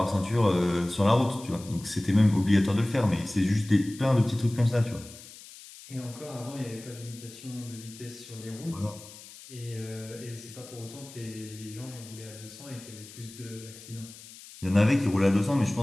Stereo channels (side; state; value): left; noise; hiss, 18 dB below the sound